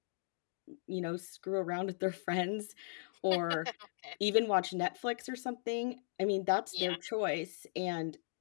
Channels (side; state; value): right; silent; digital silence